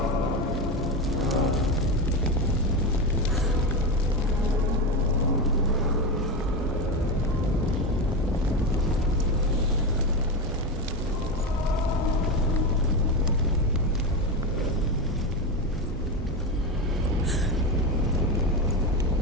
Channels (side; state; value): right; noise; hum, 8 dB below the sound